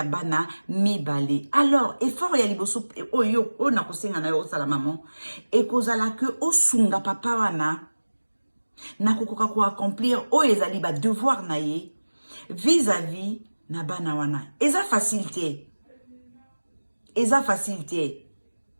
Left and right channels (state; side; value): inverted; both; correlation -1.00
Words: bana mibale. Alors, effort ya liboso o yo. O na kosenga na yo osala maman. E kozala ke o sunga papa wana. Na kokoka ko accomplir o ezali ba devoir na ye vis-à-vis na bana wana. Eza facilité. Eza facilité.